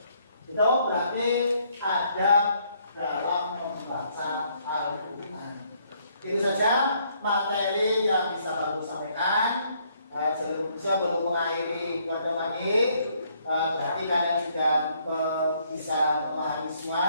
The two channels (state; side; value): inverted; both; correlation -0.68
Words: Itu berarti adab dalam membaca Al-Quran. Itu saja materi yang bisa aku sampaikan. Sebelum mengakhiri kepada lagi, berarti kalian sudah bisa memahami semua